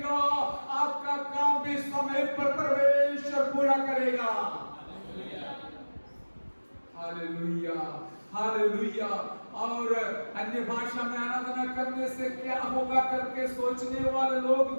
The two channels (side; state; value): both; inverted; correlation -1.00